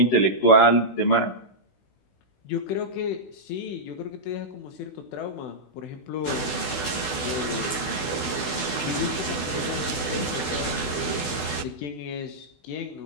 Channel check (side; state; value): right; late; 16 ms